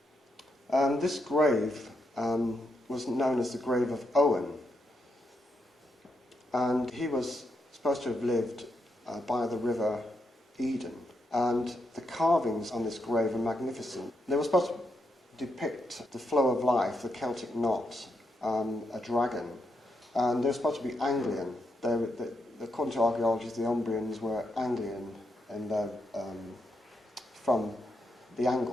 This grave was known as the grave of Owen, and he was supposed to have lived by the river Eden, and the carvings on this grave are magnificent. They were supposed to depict the flow of life, the Celtic knot, a dragon, and they're supposed to be Anglian. According to archaeologists, the Umbrians were Anglian and from the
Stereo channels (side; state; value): both; normal; correlation 0.81